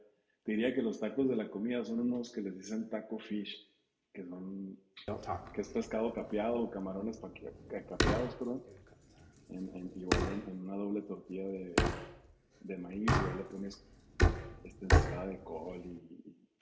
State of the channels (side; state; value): both; identical; correlation 1.00